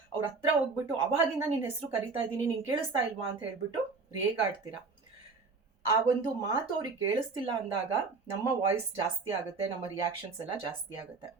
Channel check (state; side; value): quieter; left; 4.4 dB